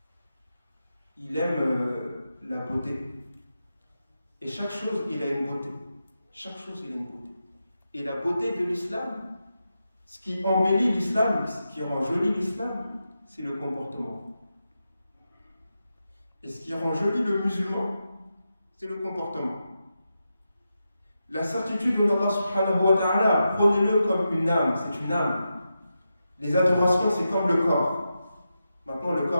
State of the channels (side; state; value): both; inverted; correlation -0.89